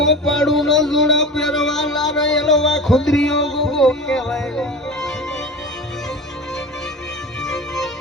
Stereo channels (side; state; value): both; normal; correlation 0.33